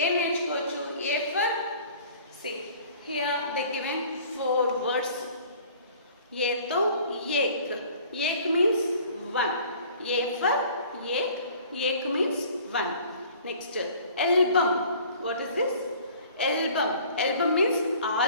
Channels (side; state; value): both; inverted; correlation -0.50